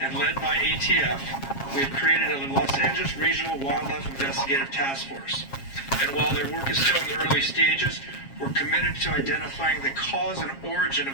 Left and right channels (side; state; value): right; late; 7.4 ms